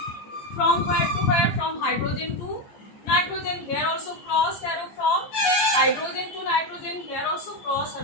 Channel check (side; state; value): right; late; 15 ms